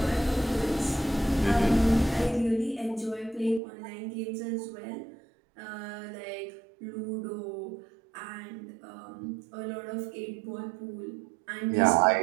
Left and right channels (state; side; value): drops out; left; at 3.6 s